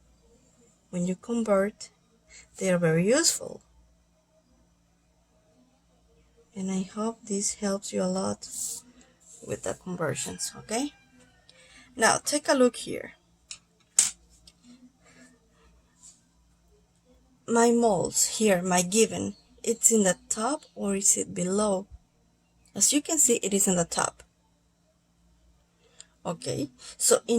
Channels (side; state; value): both; identical; correlation 1.00